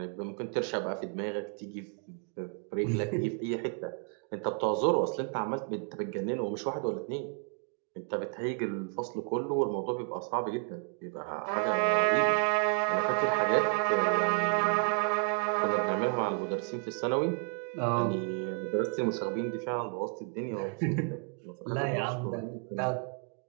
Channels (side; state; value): left; quieter; 39.8 dB